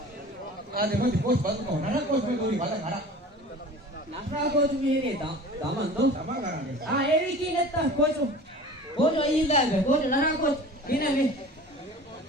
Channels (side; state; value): both; normal; correlation 0.41